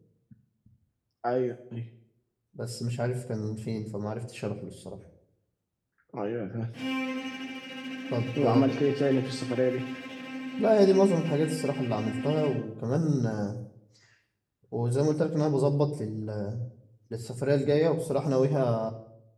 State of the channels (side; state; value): both; identical; correlation 1.00